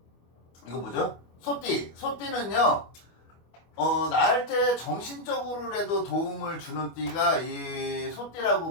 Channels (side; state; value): right; late; 25 ms